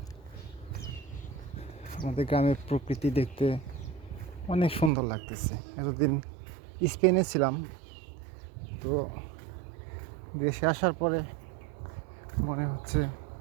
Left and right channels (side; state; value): left; drops out; at 4.9 s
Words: আমাদের গ্রামের প্রকৃতি দেখতে অনেক সুন্দর লাগতেছে। এতদিন স্পেনে ছিলাম, তো দেশে আসার পরে মনে হচ্ছে